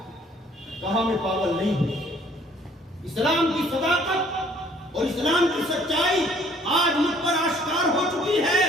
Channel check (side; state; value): both; normal; correlation 0.59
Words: کہا میں پاگل نہیں ہوں، اسلام کی صداقت اور اسلام کی سچائی آج مجھ پر آشکار ہو چکی ہے،